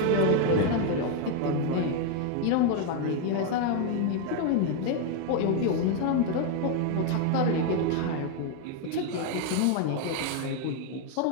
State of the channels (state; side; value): different; both; correlation 0.01